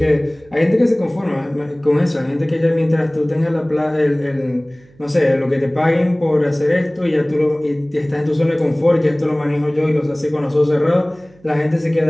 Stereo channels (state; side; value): noise; right; hum, 28 dB below the sound